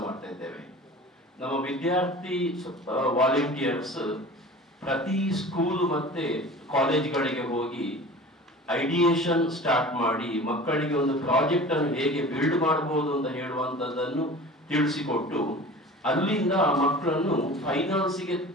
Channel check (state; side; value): normal; both; correlation 0.39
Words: ಮಾಡ್ತಾ ಇದ್ದೇವೆ. ನಮ್ಮ ವಿದ್ಯಾರ್ಥಿ ವಾಲಂಟಿಯರ್ಸ್ ಪ್ರತಿ ಸ್ಕೂಲ್ ಮತ್ತೆ ಕಾಲೇಜ್ಗಳಿಗೆ ಹೋಗಿ ಐಡಿಯೇಷನ್ ಸ್ಟಾರ್ಟ್ ಮಾಡಿ ಮಕ್ಕಳಿಗೆ ಒಂದು ಪ್ರಾಜೆಕ್ಟ್ ಅನ್ನು ಹೇಗೆ ಬಿಲ್ಡ್ ಮಾಡಬಹುದು ಅಂತ ಹೇಳುವಂಥದ್ದನ್ನು ತಿಳಿಸಿಕೊಟ್ಟು ಅಲ್ಲಿಂದ ಮಕ್ಕಳನ್ನು ಫೈನಲ್ಸ್ಗೆ